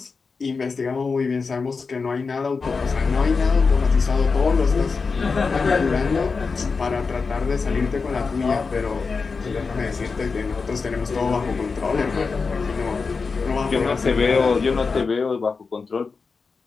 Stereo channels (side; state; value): right; quieter; 4.7 dB